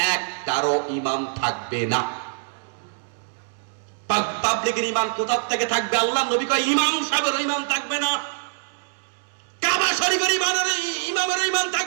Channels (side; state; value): left; silent; digital silence